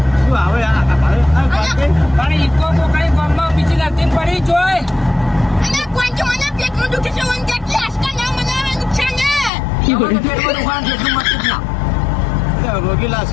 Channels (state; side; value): drops out; right; at 9.5 s